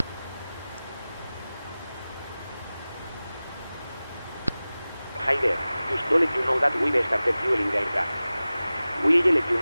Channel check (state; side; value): inverted; both; correlation -0.97